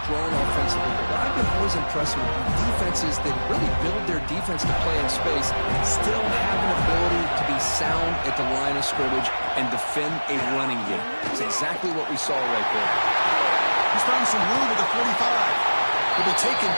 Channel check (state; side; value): inverted; both; correlation -1.00